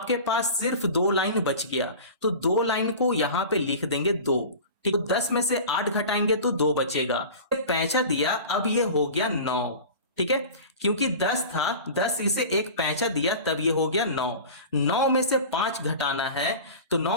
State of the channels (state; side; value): inverted; both; correlation -0.35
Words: पास सिर्फ 2 लाइन बच गया, तो 2 लाइन को यहां पे लिख देंगे 2, ठीक। तो 10 में से 8 घटाएंगे तो 2 बचेगा, पैंचा दिया, अब ये हो गया 9, ठीक है। क्योंकि 10 था, 10 इसे एक पैंचा दिया तब ये हो गया 9। 9 में से 5 घटाना है, तो